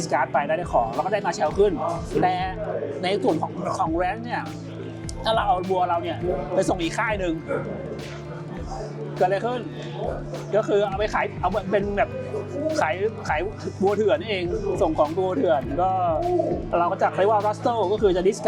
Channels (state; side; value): identical; both; correlation 1.00